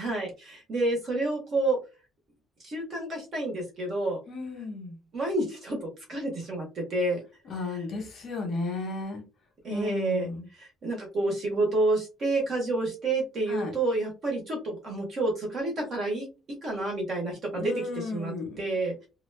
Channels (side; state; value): both; normal; correlation 0.61